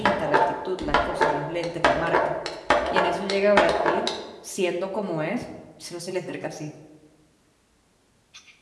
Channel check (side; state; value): both; identical; correlation 1.00